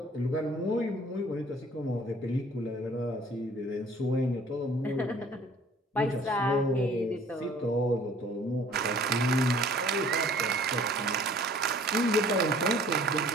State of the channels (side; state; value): both; normal; correlation 0.53